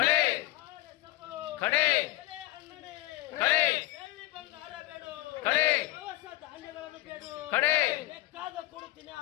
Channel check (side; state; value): right; quieter; 17.4 dB